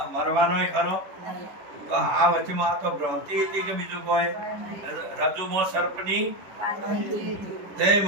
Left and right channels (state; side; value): late; left; 10 ms